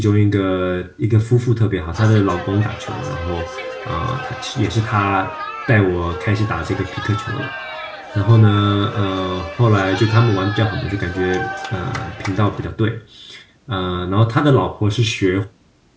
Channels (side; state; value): both; identical; correlation 1.00